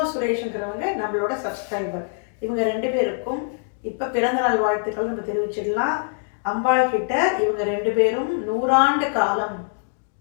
சுரேஷ்ங்கிறவங்க நம்மளோட சப்ஸ்கிரைபர். இவங்க ரெண்டு பேருக்கும் இப்ப பிறந்த நாள் வாழ்த்துக்கள் நம்ம தெரிவிச்சிடலாம். அம்பாள் கிட்ட இவங்க ரெண்டு பேரும் 100 ஆண்டு காலம்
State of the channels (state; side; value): silent; right; 63 dB below the other